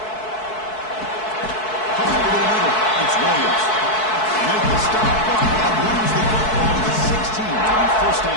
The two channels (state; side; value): late; right; 4.6 ms